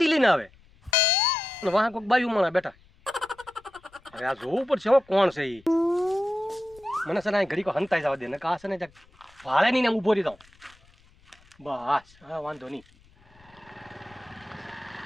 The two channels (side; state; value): left; noise; rumble, 29 dB below the sound